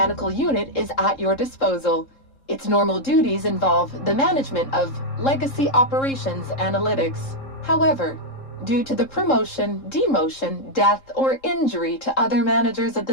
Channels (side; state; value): right; late; 3.7 ms